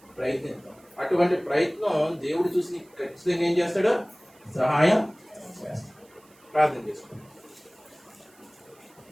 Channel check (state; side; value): noise; right; hiss, 29 dB below the sound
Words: ప్రయత్నిద్దాం. అటువంటి ప్రయత్నం దేవుడు చూసి ఖచ్చితంగా ఏం చేస్తాడు? సహాయం చేస్తాడు. ప్రార్థన చేసుకోండి.